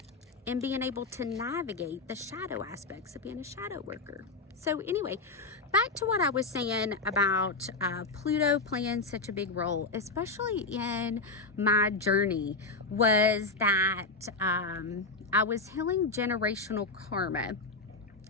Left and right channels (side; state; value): right; quieter; 3.6 dB